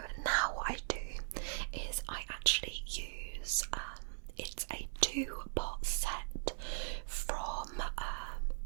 now what I do is I actually use it's a 2-pot set from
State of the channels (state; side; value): silent; left; 51 dB below the other